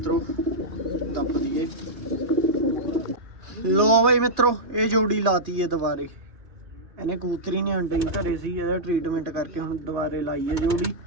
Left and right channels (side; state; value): left; late; 2.6 ms